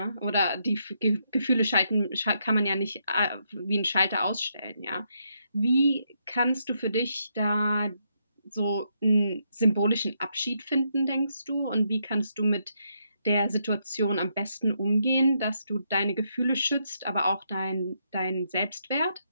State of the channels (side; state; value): both; inverted; correlation -0.78